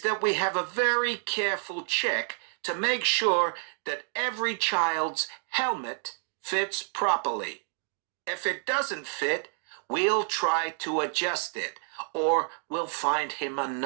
that we have a very careful check to make sure that every child's helmet fits properly. If it doesn't fit, we'll try to adjust it, or we'll find him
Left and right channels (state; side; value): silent; left; 56 dB below the other